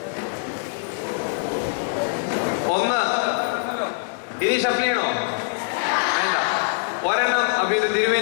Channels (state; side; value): silent; right; digital silence